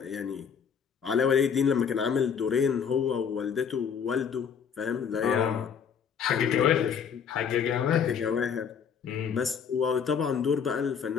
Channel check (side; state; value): right; quieter; 7.1 dB